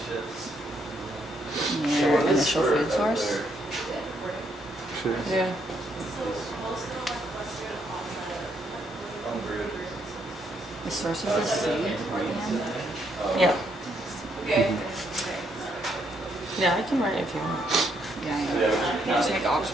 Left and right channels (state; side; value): normal; both; correlation 0.74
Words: initial food source. Sure. Yeah. The source of the sea. Yeah. Yeah, I can write it if you want. Yeah, I know. You just make